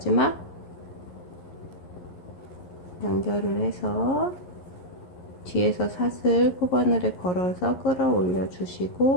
연결을 해서 뒤에서 사슬 코바늘에 걸어서 끌어올려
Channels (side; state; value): right; late; 11 ms